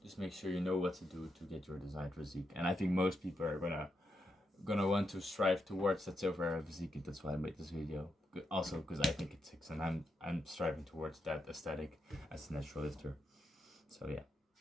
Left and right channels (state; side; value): normal; both; correlation 0.83